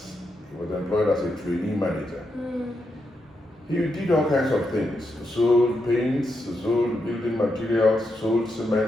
he was employed as a trainee manager. He did all kinds of things. Sold paints, sold building materials, sold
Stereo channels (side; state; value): both; normal; correlation 0.83